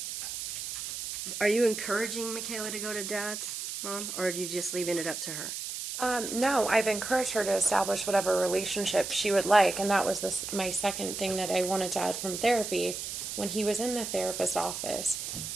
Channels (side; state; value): right; noise; hiss, 6 dB below the sound